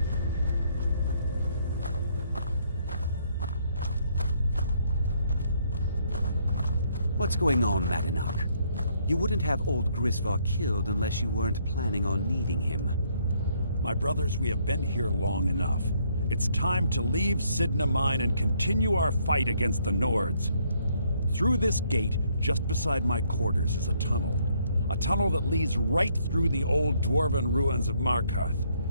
What's going on, Madanach? You wouldn't have old Grisvar killed unless you weren't planning on needing him. My brothers, we have been here long enough. It's time to leave Sidna Mine and continue our fight against the Nords. Through this gate, just beside my quarters, is a tunnel. A tunnel that leads right through the old dwarven ruins of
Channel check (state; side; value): inverted; both; correlation -0.69